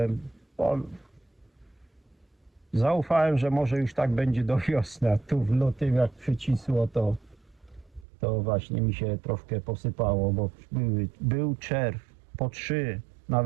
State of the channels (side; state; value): left; drops out; at 8.1 s